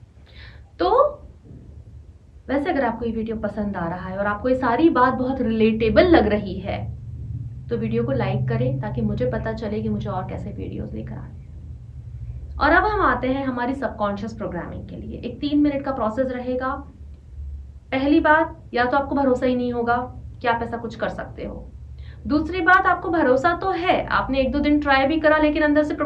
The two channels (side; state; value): both; identical; correlation 1.00